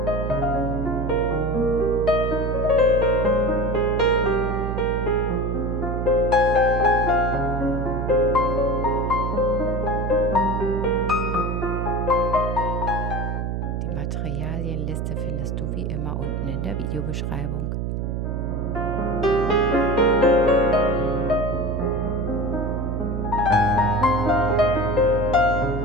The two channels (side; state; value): right; noise; hum, 2 dB below the sound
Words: Die Materialienliste findest du wie immer unten in der Videobeschreibung.